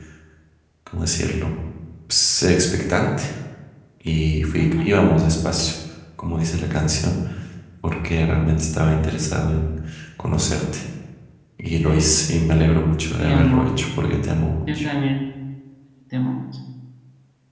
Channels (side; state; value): both; identical; correlation 1.00